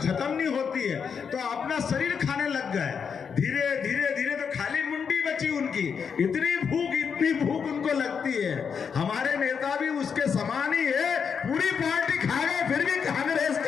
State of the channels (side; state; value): right; quieter; 6.5 dB